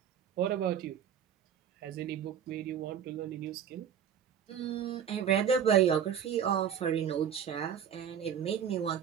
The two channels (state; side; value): quieter; left; 8.6 dB